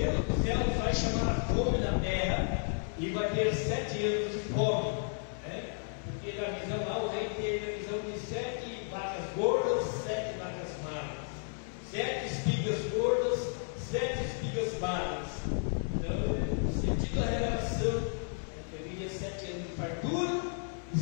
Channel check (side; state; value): right; silent; 56 dB below the other